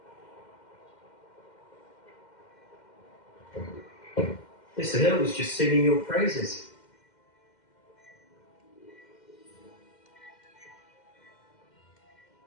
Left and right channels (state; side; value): late; right; 2.1 ms